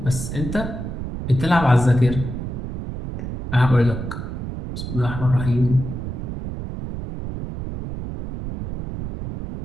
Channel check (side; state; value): right; noise; rumble, 7 dB below the sound